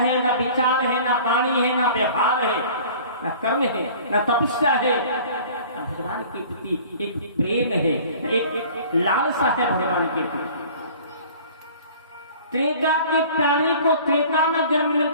ना विचार है, ना वाणी है, ना व्यवहार है, ना कर्म है, ना तपस्या है, ना भगवान के प्रति एक प्रेम है, एक लालसा है भगवान के प्रति। त्रेता के प्राणी को त्रेता में जन्म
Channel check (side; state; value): both; inverted; correlation -0.46